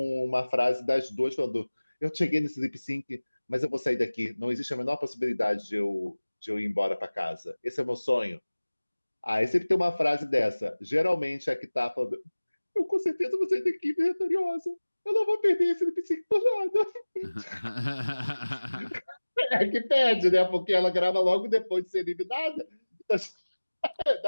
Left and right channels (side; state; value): both; inverted; correlation -1.00